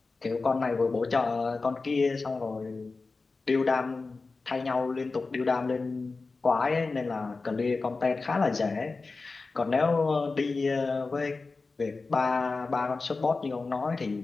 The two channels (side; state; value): right; quieter; 3.9 dB